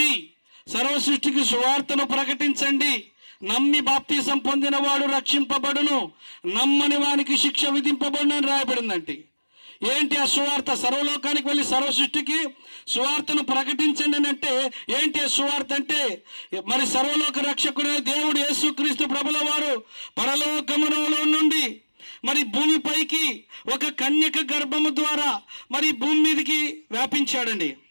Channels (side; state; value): both; inverted; correlation -1.00